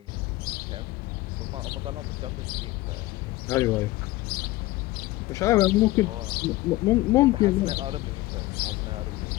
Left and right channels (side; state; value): right; quieter; 18.5 dB